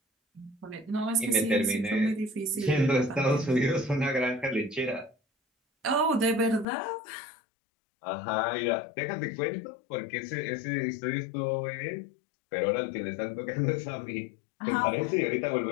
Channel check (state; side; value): drops out; right; at 6.7 s